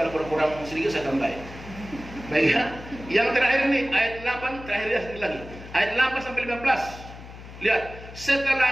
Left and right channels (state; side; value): noise; left; hum, 15 dB below the sound